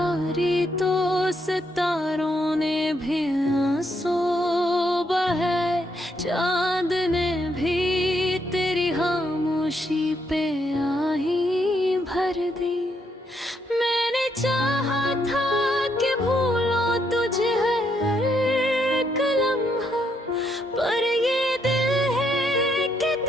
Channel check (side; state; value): both; normal; correlation 0.76